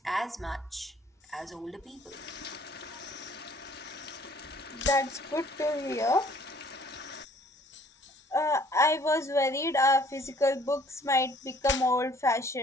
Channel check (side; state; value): both; normal; correlation 0.57